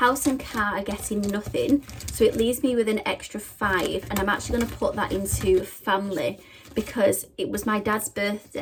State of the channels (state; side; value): identical; both; correlation 1.00